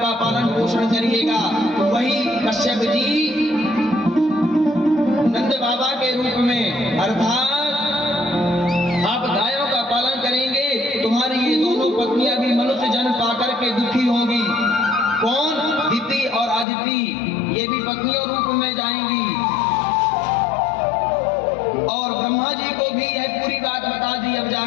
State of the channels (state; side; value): drops out; right; at 16.7 s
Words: पालन पोषण करिएगा। तो वही कश्यप जी नंद बाबा के रूप में अर्थात आप गायों का पालन करेंगे, तुम्हारी ये दोनों पत्नियां भी मनुष्य जन्म पाकर के दुखी होंगी। कौन? दिति और अदिति, ये भी पत्नियों रूप में जाएंगी। और ब्रह्मा जी को भी यह पूरी बात बता दी। अब